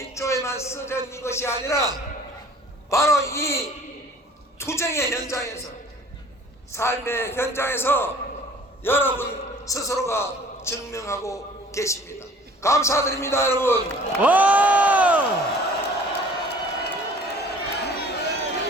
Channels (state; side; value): normal; both; correlation 0.50